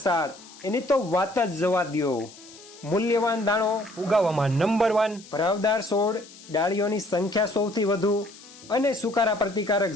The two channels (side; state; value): left; noise; hiss, 20 dB below the sound